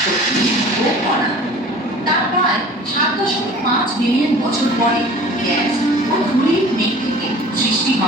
শক্তি ও কণা। তার প্রায় 7.5 বিলিয়ন বছর পরে গ্যাস ও ধূলির মেঘ থেকে সৃষ্টি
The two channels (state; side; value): normal; both; correlation 0.44